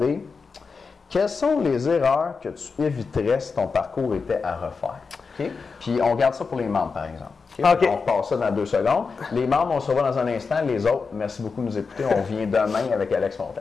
Quelles sont les erreurs que tu éviterais si ton parcours était à refaire? Okay? Puis on garde ça pour les membres, par exemple. Okay? On repasse ça dans 2 secondes. Les membres, on se revoit dans un instant. Les autres, merci beaucoup de nous écouter. On vient demain avec Alex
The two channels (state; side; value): quieter; right; 4.9 dB